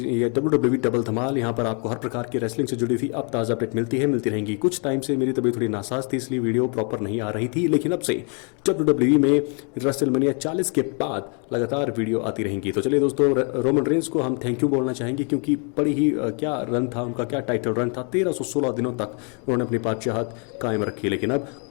WWE डबल धमाल यहाँ पर आपको हर प्रकार की रेसलिंग से जुड़ी हुई अब ताज़ा अपडेट मिलती रहेंगी। कुछ टाइम से मेरी तबीयत थोड़ी नासाज थी, इसलिए वीडियो प्रॉपर नहीं आ रही थी, लेकिन अब से WWE में रेसलमेनिया 40 के बाद लगातार वीडियो आती रहेंगी। तो चलिए दोस्तों, रोमन रेंस को हम थैंक यू बोलना चाहेंगे, क्योंकि बड़ी ही क्या रन था उनका, क्या टाइटल रन था। 1316 दिनों तक उन्होंने अपनी बादशाहत कायम रखी। लेकिन अब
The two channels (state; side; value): quieter; right; 38.0 dB